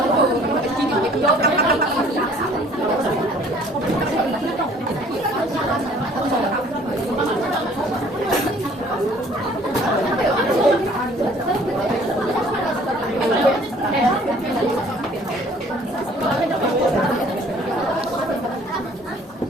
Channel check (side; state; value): both; normal; correlation 0.55